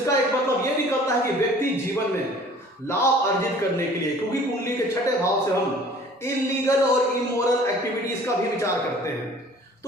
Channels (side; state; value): both; normal; correlation 0.50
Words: एक मतलब ये निकलता है कि व्यक्ति जीवन में लाभ अर्जित करने के लिए, क्योंकि कुंडली के छठे भाव से हम इलीगल और इमोरल एक्टिविटीज का भी विचार करते हैं।